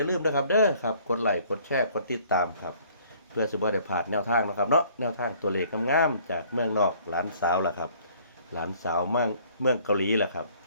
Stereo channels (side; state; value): both; inverted; correlation -0.58